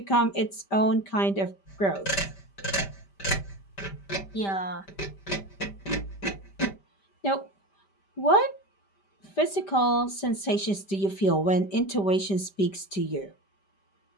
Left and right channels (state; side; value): late; right; 5.1 ms